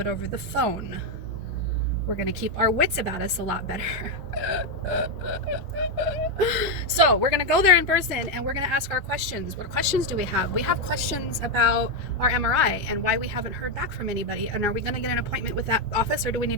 over the phone. We're going to keep our wits about us a lot better. So we're going to go there in person and we're going to ask our questions. What questions do we have? We have questions about our MRI and why we haven't heard back from anybody. And are we going to get an appointment with that office, or do we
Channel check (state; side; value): normal; both; correlation 0.04